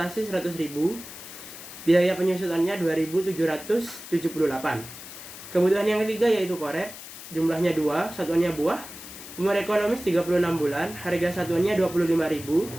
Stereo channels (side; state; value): left; noise; hiss, 14 dB below the sound